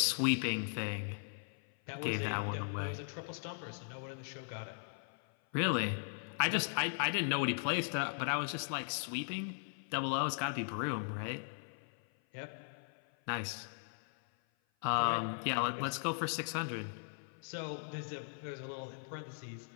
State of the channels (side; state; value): right; silent; 52 dB below the other